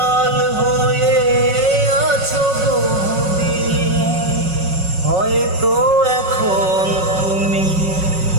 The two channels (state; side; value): late; left; 5.4 ms